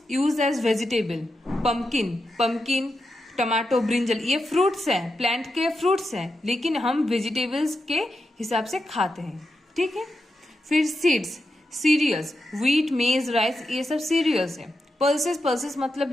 use as vegetable, pumpkin, tomato, brinjal, ये फ्रूट्स हैं, प्लांट के फ्रूट्स हैं, लेकिन हम वेजिटेबल्स के हिसाब से खाते हैं। ठीक है। फिर सीड्स, सीरियल्स, व्हीट, मेज, राइस, ये सब सीरियल्स हैं। पल्सेस मतलब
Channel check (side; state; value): both; normal; correlation 0.87